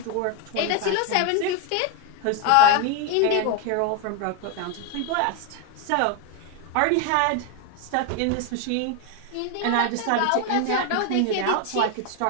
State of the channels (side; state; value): both; different; correlation 0.01